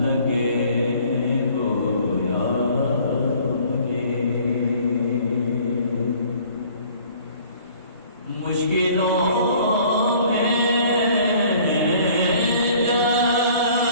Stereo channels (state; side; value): inverted; both; correlation -0.54